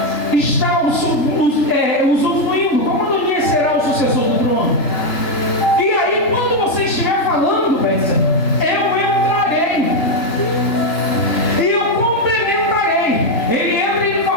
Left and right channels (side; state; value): right; late; 3.3 ms